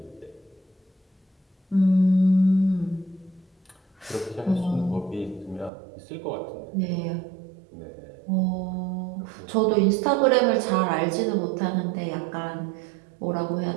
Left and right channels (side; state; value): left; drops out; at 5.7 s